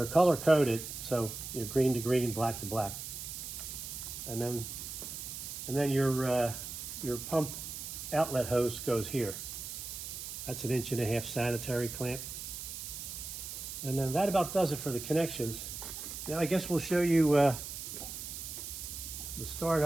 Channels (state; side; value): noise; right; hiss, 8 dB below the sound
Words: color coded, so you're green to green, black to black. And then your pump outlet hose goes here. That's an 1.5 inch sanitary clamp. And then that about does it for the connections. Now I guess we'll show you the